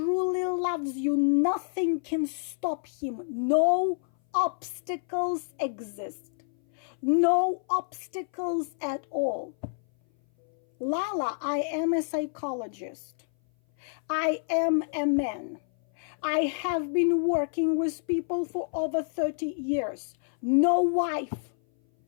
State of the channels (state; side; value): silent; right; 57 dB below the other